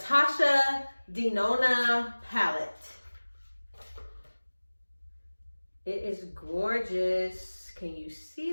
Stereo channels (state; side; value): inverted; both; correlation -1.00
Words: Dinona palette. It is gorgeous. Can you see